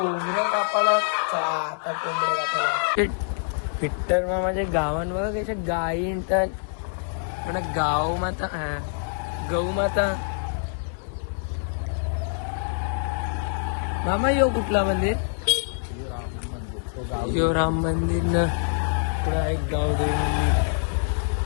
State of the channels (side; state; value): right; silent; 62 dB below the other